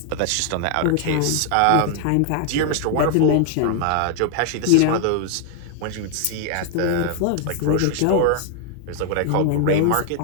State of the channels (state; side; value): different; both; correlation 0.00